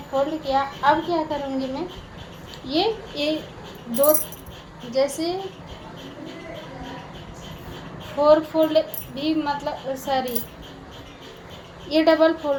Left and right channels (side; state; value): both; identical; correlation 1.00